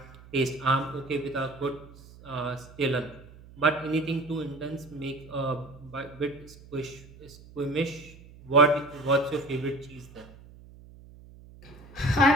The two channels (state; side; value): noise; right; hum, 21 dB below the sound